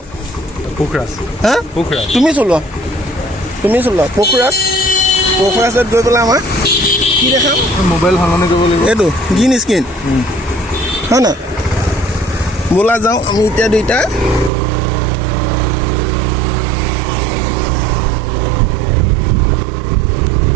পোখৰাজ হা তুমি চলোৱা পোখৰাজত গৈ পেলাই আমাৰ কি দেখাম মোবাইল সলনি কৰিব লাগিব এইটো গ্ৰীণ স্ক্ৰীণ হয় না ব'লা যাওঁ আমি এতিয়া দুইটা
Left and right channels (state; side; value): drops out; left; at 14.5 s